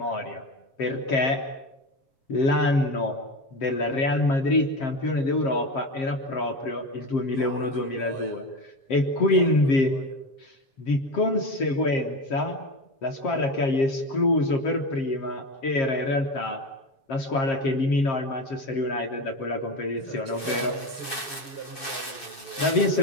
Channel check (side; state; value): right; late; 7.2 ms